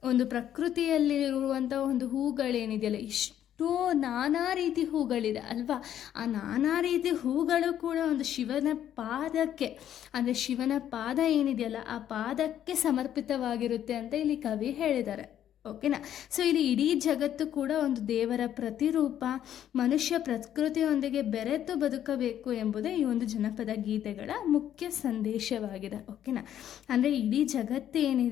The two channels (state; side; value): quieter; right; 10.7 dB